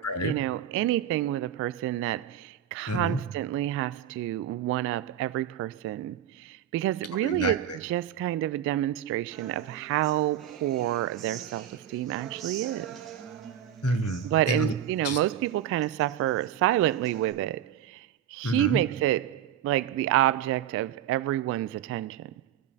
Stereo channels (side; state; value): left; quieter; 10.2 dB